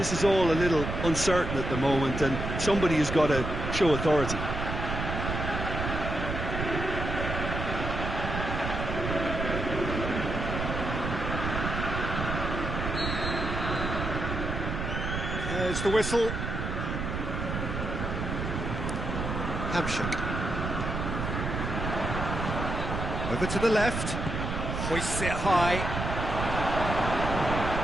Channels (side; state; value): right; noise; rumble, 3 dB below the sound